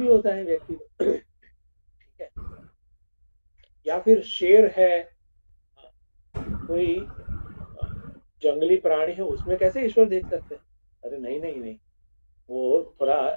होता है व्यक्ति को। ठीक है, या फिर शेर है, कोई जंगली प्राणी है, उसमें कैसे ईश्वर देख सकते हैं, अरे नहीं, वो थोड़ा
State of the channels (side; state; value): both; inverted; correlation -1.00